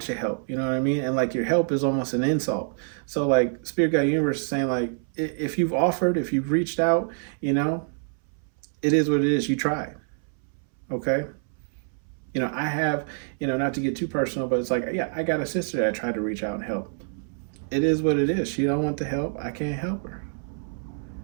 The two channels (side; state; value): left; silent; 61 dB below the other